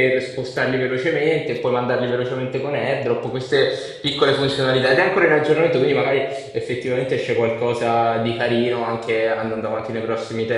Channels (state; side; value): identical; both; correlation 1.00